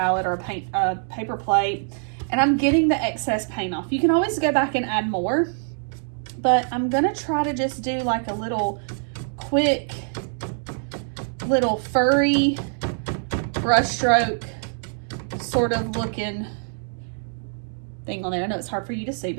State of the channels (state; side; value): silent; left; 62 dB below the other